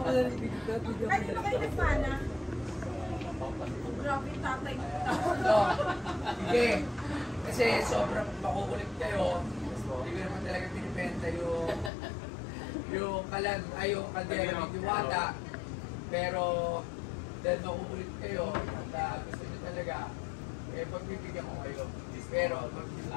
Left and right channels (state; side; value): drops out; right; at 11.9 s